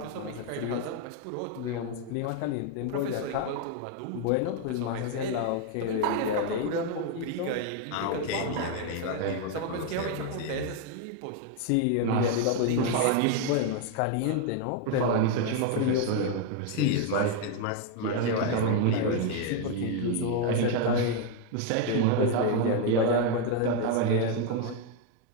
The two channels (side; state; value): both; different; correlation 0.01